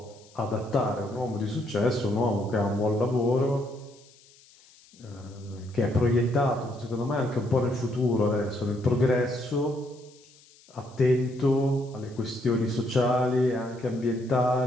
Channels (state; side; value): noise; left; hiss, 27 dB below the sound